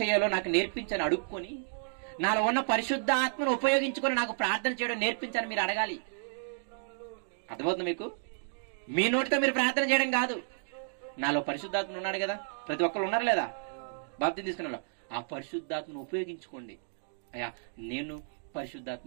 నాకు నేర్పించని అడుక్కొని, నాలో ఉన్న పరిశుద్ధ ఆత్మను ఉపయోగించుకొని నాకు ప్రార్థన చేయడం నేర్పించని మీరు అడగాలి. అర్థమవుతుంది మీకు? మీ నోటితో మీరు ప్రార్థన చేయడం కాదు. నాలో పరిశుద్ధాత్మ ఉన్నాడు కదా, ప్రతి ఒక్కరు ఉన్నారు లేదా బాప్తిసం తీసుకున్న, ఆ పరిశుద్ధాత్మను ఉపయోగించుకోండి. అయ్యా నేను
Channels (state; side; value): silent; left; digital silence